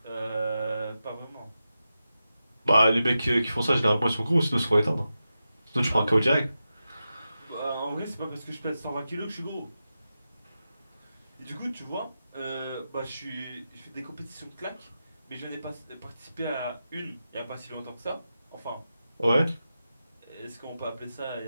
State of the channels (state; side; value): inverted; both; correlation -0.91